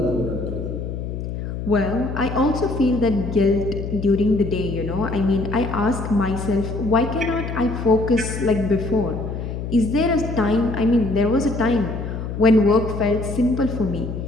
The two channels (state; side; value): noise; left; hum, 6 dB below the sound